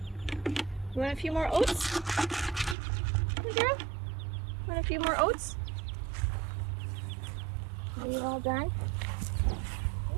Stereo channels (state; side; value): drops out; left; at 2.8 s